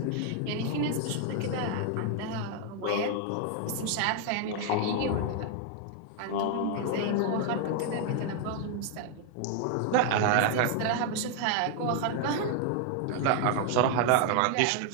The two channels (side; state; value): both; different; correlation 0.00